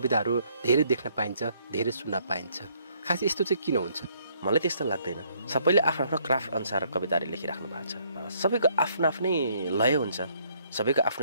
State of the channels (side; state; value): both; inverted; correlation -0.67